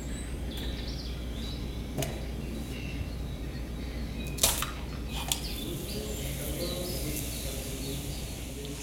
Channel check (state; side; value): identical; both; correlation 1.00